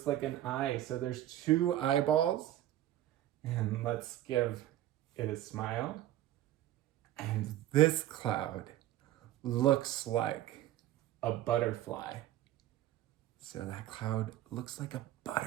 like an eye. So there's two eyeballs. And let's give it a smile. And this cloud looks like a butterfly. So that cloud looks like a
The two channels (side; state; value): left; quieter; 13.5 dB